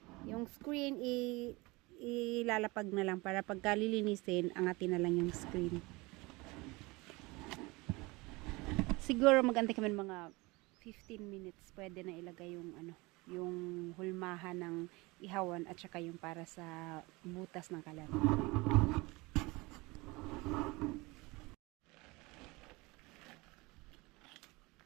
Yung screen ilalapag na lang para pagka lilinisin, angatin na lang yung screen. siguro magantay kami ng mga 15 minutes. Pwede na ilagay yung ano, yung hulmahan ng ihawan at saka yung para sa butas ng kalan.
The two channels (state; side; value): quieter; left; 23.9 dB